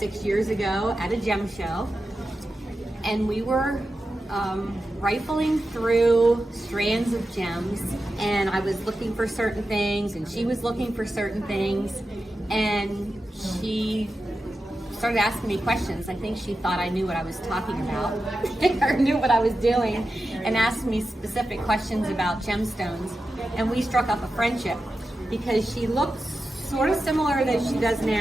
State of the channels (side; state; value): both; normal; correlation 0.91